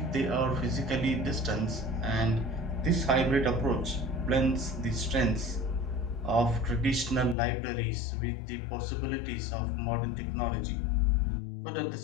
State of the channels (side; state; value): right; drops out; at 7.4 s